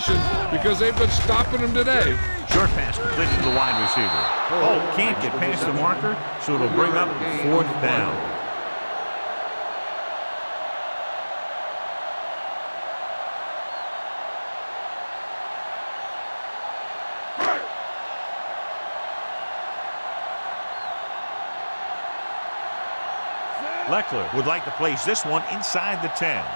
because they've been stopping them today. Short pass completed to the wide receiver. Oh, can't get past the marker, so it'll bring up fourth down. Leckler would like to place this one inside the 10.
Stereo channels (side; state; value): both; inverted; correlation -1.00